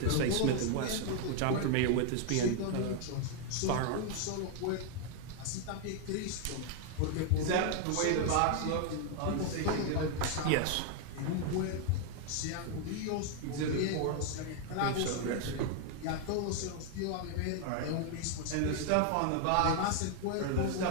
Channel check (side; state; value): both; different; correlation 0.00